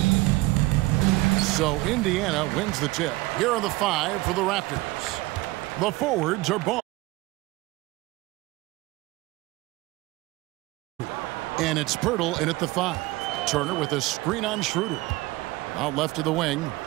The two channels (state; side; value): quieter; left; 20.3 dB